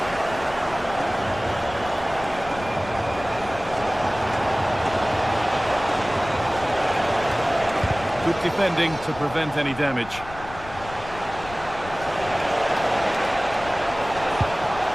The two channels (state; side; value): noise; left; rumble, 15 dB below the sound